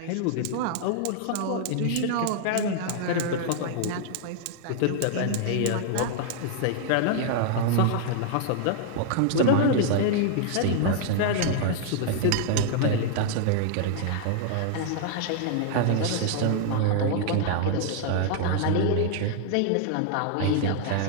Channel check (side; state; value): both; different; correlation 0.00